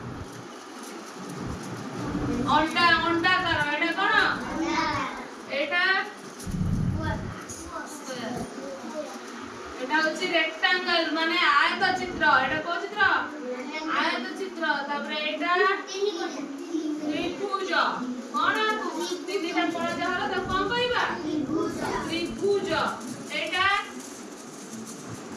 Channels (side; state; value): both; identical; correlation 1.00